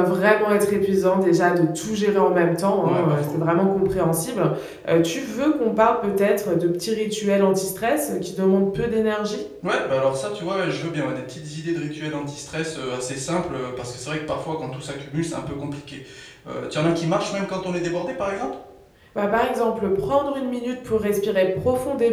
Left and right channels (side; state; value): both; identical; correlation 1.00